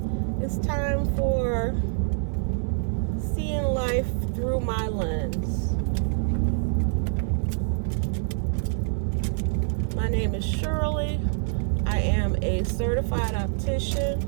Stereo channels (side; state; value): left; silent; digital silence